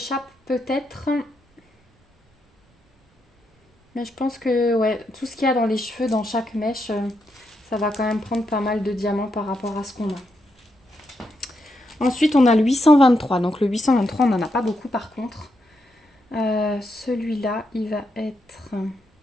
peut-être. Mais je pense que ouais, tout ce qu'il y a dans les cheveux, dans chaque mèche, ça va quand même prendre pas mal de diamants par rapport à ce qu'on a. Ensuite, on a le 823. Donc le 823, on n'en a pas beaucoup par contre. Celui-là, il va être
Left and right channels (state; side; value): normal; both; correlation 0.82